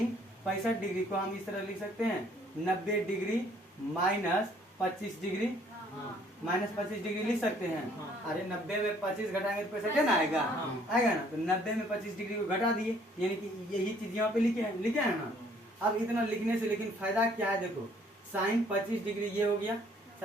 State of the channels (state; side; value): normal; both; correlation 0.61